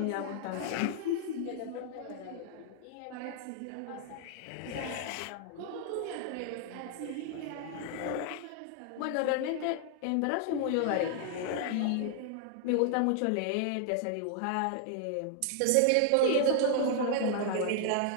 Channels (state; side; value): different; both; correlation 0.00